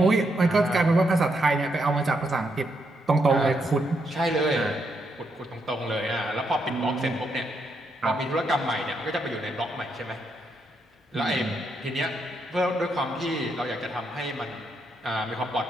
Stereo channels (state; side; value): normal; both; correlation 0.79